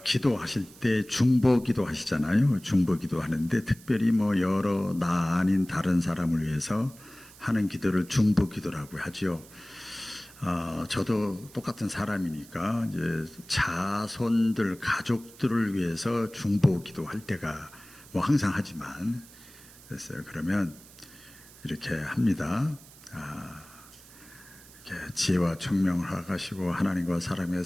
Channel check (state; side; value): noise; right; hiss, 21 dB below the sound